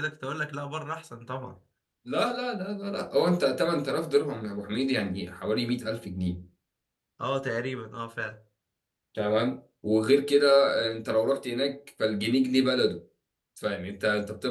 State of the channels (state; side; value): identical; both; correlation 1.00